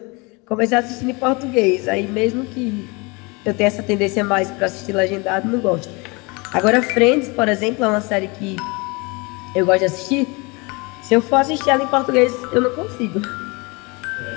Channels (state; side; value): quieter; right; 27.7 dB